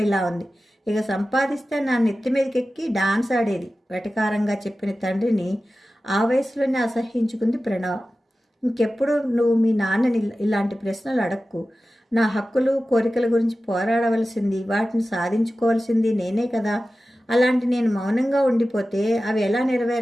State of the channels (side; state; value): both; normal; correlation 0.95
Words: ఇలా ఉంది. ఇక సంపాదిస్తే నా నెత్తి మీదకెక్కి డాన్స్ ఆడేది, వెటకారంగా చెప్పిన తండ్రిని ఆ వయసులోనే అసహ్యించుకుంది ప్రణవ. ఇంకెప్పుడు నువ్వు మీ నాన్నని ఇలాంటి ప్రశ్నలు అడక్కు. నా హక్కులు కోరికల గురించి పోరాడవలసింది, వాటిని సాధించుకోవాల్సింది నేనే కదా. అలాంటి నేను మౌనంగా ఉండిపోతే అవి ఎలా